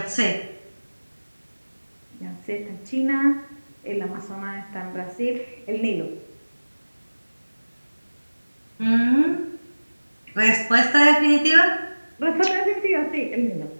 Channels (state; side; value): inverted; both; correlation -1.00